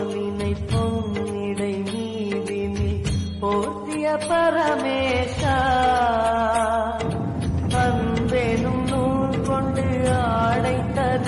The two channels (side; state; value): both; identical; correlation 1.00